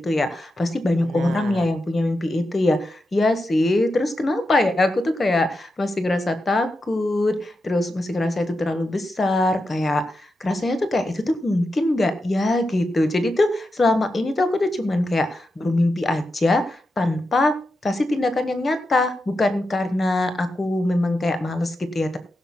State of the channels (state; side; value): normal; both; correlation 0.88